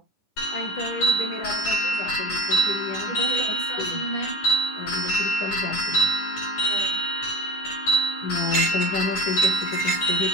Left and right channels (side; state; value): right; late; 9.8 ms